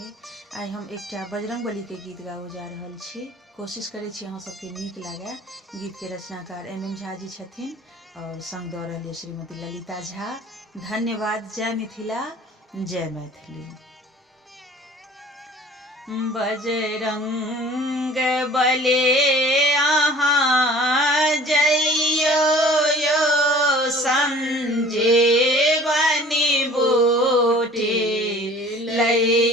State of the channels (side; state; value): both; normal; correlation 0.48